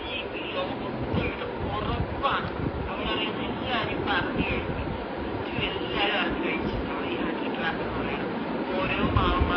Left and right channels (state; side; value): identical; both; correlation 1.00